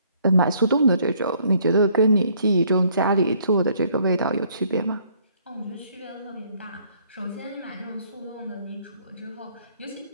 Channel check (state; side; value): inverted; both; correlation -0.65